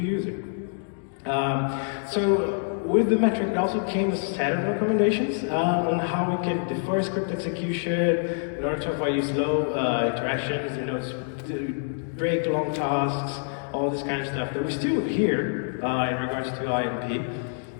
So with the metric, it also came a set of recommendations on how we can defer script execution in order to avoid slow interactions, to break long tasks, all this kind of stuff that we still hear in regards to INP.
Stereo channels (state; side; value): silent; right; 61 dB below the other